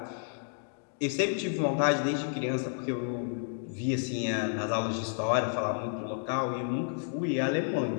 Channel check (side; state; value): right; silent; digital silence